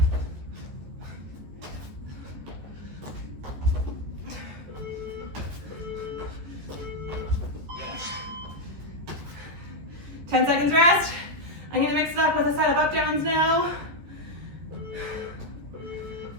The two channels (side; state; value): left; late; 14 ms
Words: Ten seconds rest. I'm gonna mix it up with a set of up downs now.